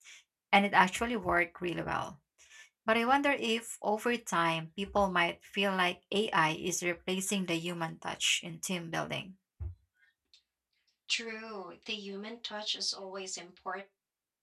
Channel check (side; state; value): both; identical; correlation 1.00